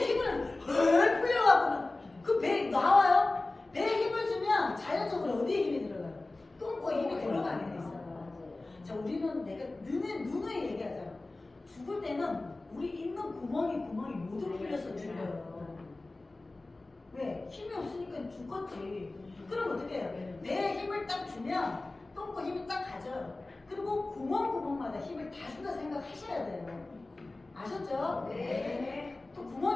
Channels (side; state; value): right; quieter; 3.0 dB